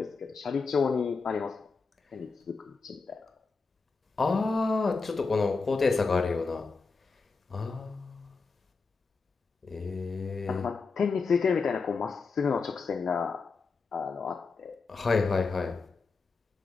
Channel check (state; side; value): quieter; right; 4.5 dB